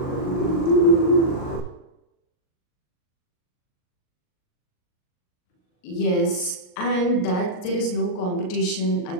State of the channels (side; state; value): right; late; 39 ms